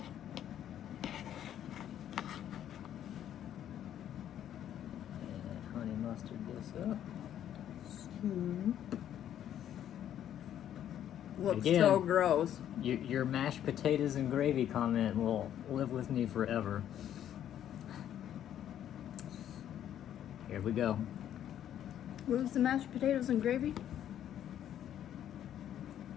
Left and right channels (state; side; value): quieter; right; 10.6 dB